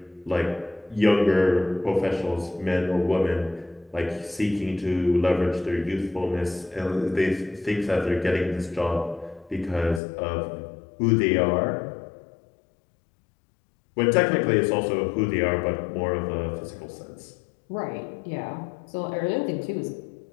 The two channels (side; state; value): right; drops out; at 10.0 s